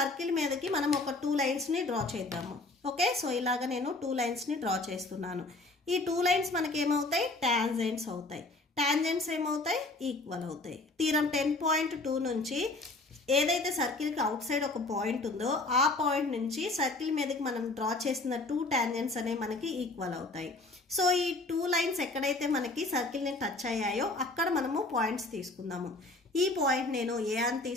మీదకి మనం ఒక 2 లైన్స్ని డ్రా చేద్దాము. ఓకే, సో ఇలాగ నేను 2 లైన్స్ని డ్రా చేస్తున్నాను. ఈ 2 లైన్స్ మనకి ఏమవుతాయి? టాంజెంట్స్ అవుతాయి. టాంజెంట్స్ ఏమవుతాయి? ఈక్వల్ అవుతాయి. థీరం 10.2 నుంచి ఏదైతే సర్కిల్కి అవుట్ సైడ్ ఒక పాయింట్ ఉందో ఆ పాయింట్ నుంచి సర్కిల్ మీదకి మనం డ్రా చేసిన 2 టాంజెంట్స్ అనేవి మనకి ఈక్వల్ అవుతాయి. సో ఈ 2 లైన్స్ ఎక్కడైతే మనకి సర్కిల్ని టచ్ అయ్యాయో అక్కడ మనము పాయింట్స్ తీసుకుందాము. ఈ పాయింట్ నేను ఏ అని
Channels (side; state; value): right; quieter; 3.1 dB